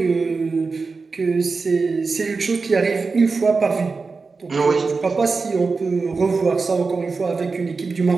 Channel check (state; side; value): quieter; left; 4.3 dB